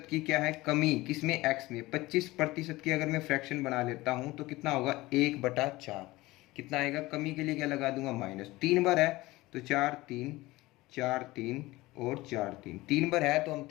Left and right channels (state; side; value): quieter; right; 19.5 dB